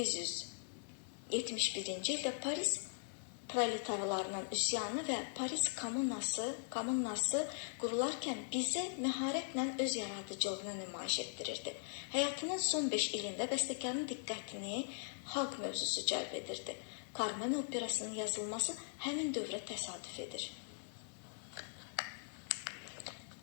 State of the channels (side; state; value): right; silent; digital silence